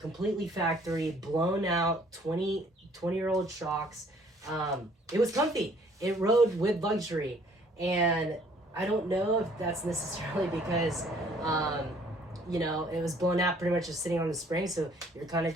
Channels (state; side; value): normal; both; correlation 0.60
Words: factory, blown out 20-year-old shocks, it was comfy. It rode with luxury. And I don't know if that's necessarily because it was blown out pretty much just sitting on the spring, so you're kind of